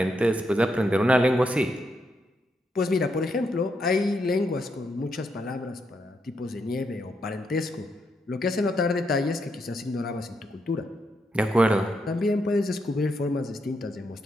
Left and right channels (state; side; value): normal; both; correlation 0.80